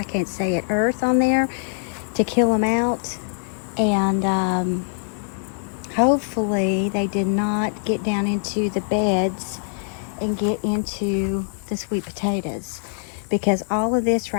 can't say it, earth on there to kill them out. And hopefully they did not get down into the beds and get into the sweet potatoes, because all of this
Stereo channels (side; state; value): right; silent; digital silence